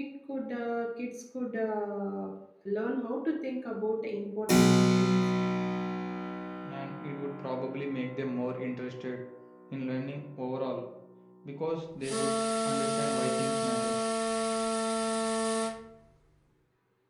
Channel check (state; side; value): identical; both; correlation 1.00